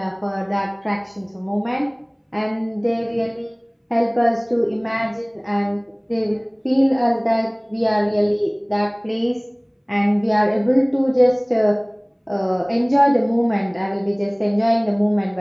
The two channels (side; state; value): both; identical; correlation 1.00